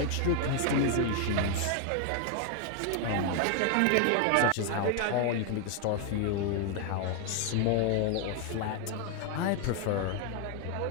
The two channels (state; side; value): different; both; correlation 0.00